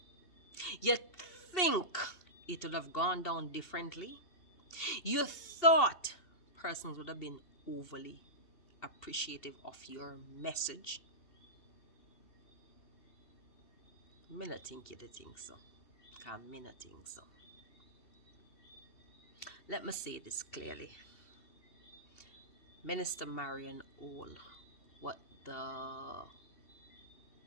You think it would have gone down differently? You thought persons would have been overly appreciative of your message? Me not think you think so. Cause me not think so. Let me say this clearly. Minister Marian All, what the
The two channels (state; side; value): late; right; 2.7 ms